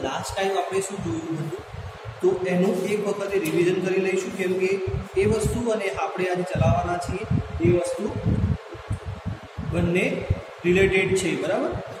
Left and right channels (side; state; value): both; identical; correlation 1.00